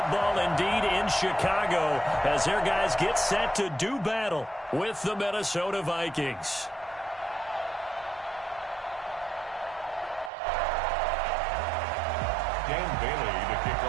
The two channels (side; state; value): left; drops out; at 10.3 s